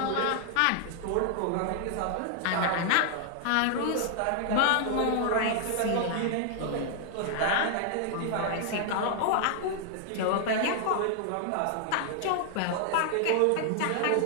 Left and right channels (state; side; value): different; both; correlation 0.00